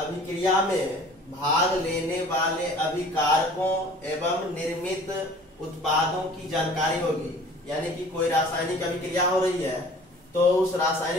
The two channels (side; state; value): both; normal; correlation 0.48